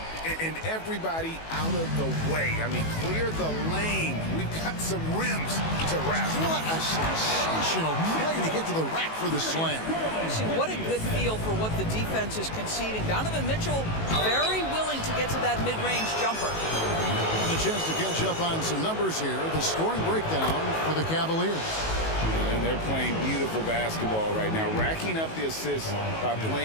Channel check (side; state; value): right; late; 19 ms